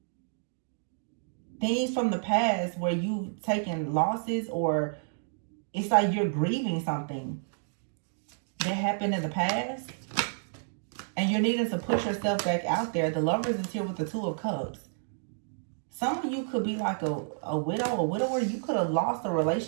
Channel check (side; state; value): left; silent; digital silence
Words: things from the past where you've taken losses, or it's like you're grieving something that happened in the past, and you're needing to push yourself back out there. The Lovers is here with the Two of Cups. Some of you could be like a widow, a widower. You could have lost a